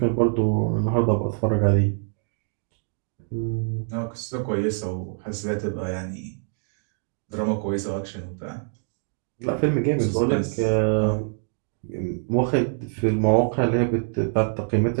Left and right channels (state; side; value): silent; left; 62 dB below the other